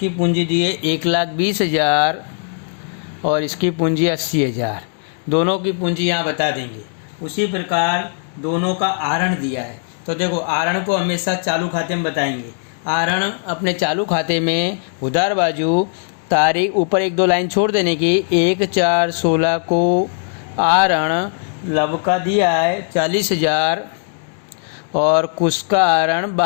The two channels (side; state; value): right; silent; digital silence